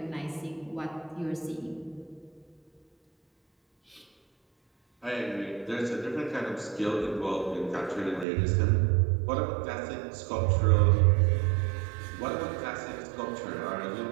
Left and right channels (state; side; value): drops out; left; at 8.2 s